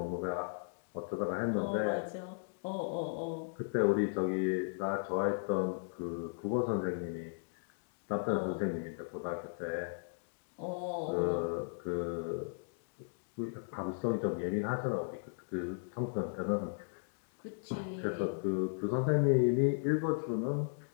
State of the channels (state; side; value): silent; right; digital silence